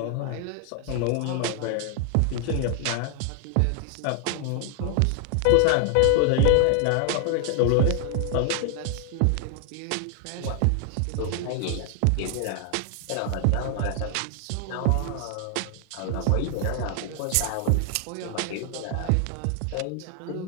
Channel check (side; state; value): both; different; correlation 0.00